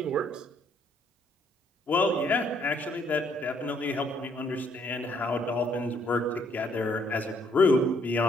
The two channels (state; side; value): normal; both; correlation 0.68